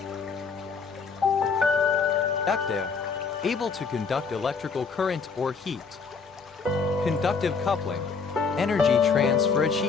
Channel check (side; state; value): right; quieter; 5.2 dB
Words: able to conduct electrical current or heat. Conductive coupling, energy transfer